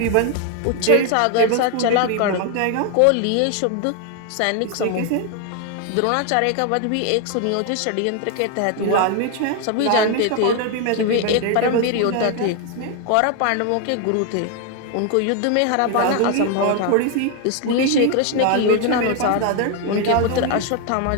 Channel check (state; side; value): different; both; correlation 0.01